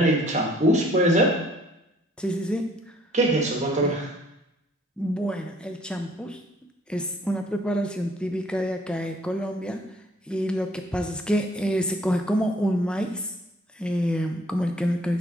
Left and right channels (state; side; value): normal; both; correlation 0.59